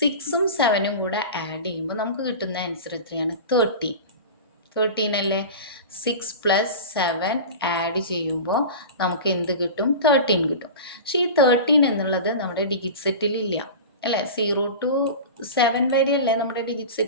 7ഉം കൂടെ ആഡ് ചെയ്യുമ്പോൾ നമുക്ക് കിട്ടുന്ന ആൻസർ എത്രയാണ്? 13 അല്ലേ? 6 + 7 ആഡ് ചെയ്യുമ്പോൾ നമുക്ക് എന്ത് കിട്ടും? 13 കിട്ടും. പക്ഷേ ഈ 13 എന്നുള്ളത് നമ്മുടെ ഡിജിറ്റ് സെറ്റിലില്ല അല്ലേ? 0 to 7 വരെയല്ലേ നമ്മുടെ ഡിജിറ്റ്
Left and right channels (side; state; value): both; inverted; correlation -0.30